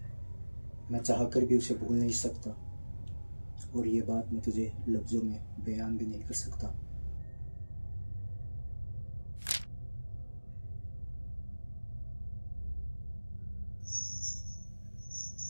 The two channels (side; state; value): both; inverted; correlation -1.00